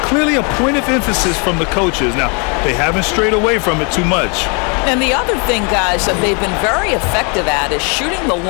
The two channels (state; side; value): quieter; right; 34.8 dB